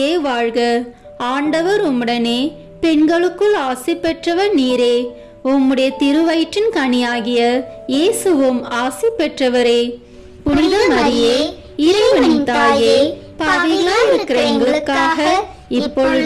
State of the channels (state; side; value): identical; both; correlation 1.00